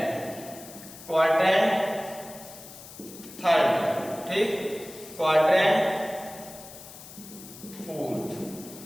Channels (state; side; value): noise; left; hiss, 16 dB below the sound